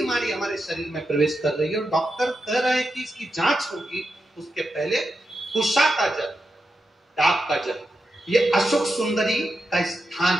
हमारे शरीर में प्रवेश कर रही है और डॉक्टर कह रहे हैं कि इसकी जांच होगी, उसके पहले कुशा का जल, डाब का जल, ये अशोक सुंदरी का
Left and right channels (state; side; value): normal; both; correlation 0.87